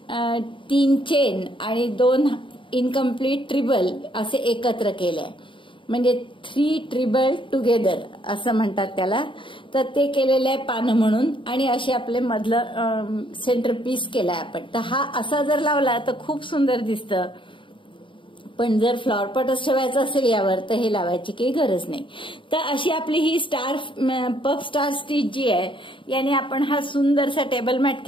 3 चेन आणि 2 इनकम्प्लीट ट्रिबल असे एकत्र केले, म्हणजे 3 ट्रिबल टुगेदर असं म्हणतात त्याला. तर ते केलेलं आहे पानं म्हणून. आणि असे आपले मधलं सेंटर पीस केलाय आपण. तर हा असा जर लावला तर खूप सुंदर दिसतं. पण जर फ्लॉवर पॉटच ठेवायचं असेल यावर तर हे लावायची काही गरज नाही. तर अशी आपली ही पफ स्टार स्टिच जी आहे याने आपण हा सुंदरसा टेबल मॅट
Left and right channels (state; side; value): late; right; 0.24 ms